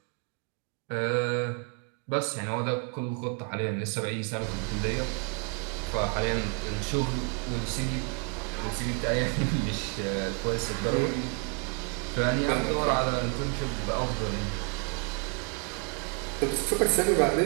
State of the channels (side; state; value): left; quieter; 33.5 dB